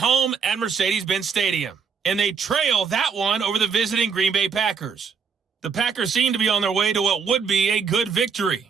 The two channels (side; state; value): left; quieter; 6.0 dB